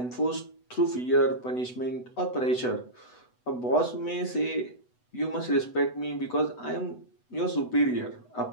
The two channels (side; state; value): right; late; 8.0 ms